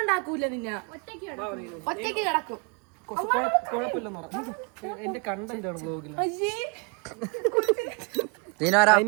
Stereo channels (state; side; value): quieter; left; 33.4 dB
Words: നിന്നെ ഒറ്റയ്ക്ക് കിടക്കും. കുഴപ്പമില്ലെന്ന് പറഞ്ഞു. എന്റെ കണ്ടന്റ് ആണ് ബ്ലോഗിൽ.